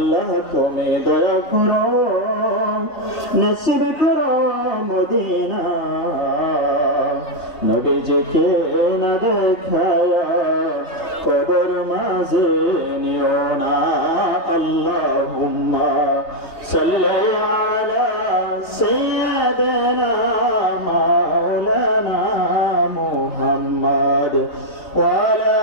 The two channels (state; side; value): late; right; 3.4 ms